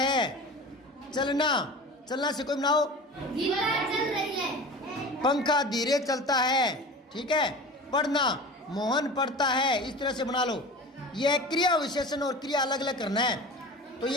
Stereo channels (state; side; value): normal; both; correlation 0.35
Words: चलना, चलना से कोई बनाओ, चल रही है। पंखा धीरे चलता है, ठीक है। पढ़ना, मोहन पढ़ता है, इस तरह से बना लो। यह क्रिया विशेषण और क्रिया अलग अलग करना है। तो